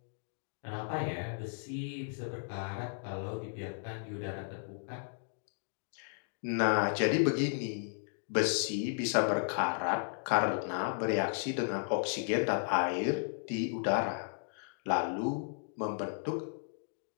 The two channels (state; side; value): silent; right; digital silence